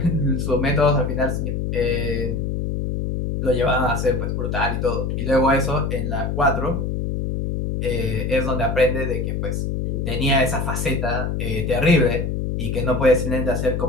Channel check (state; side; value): noise; left; hum, 1 dB below the sound